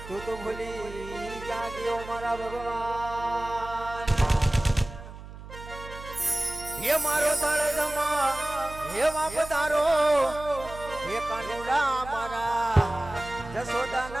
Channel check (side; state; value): right; noise; hum, 14 dB below the sound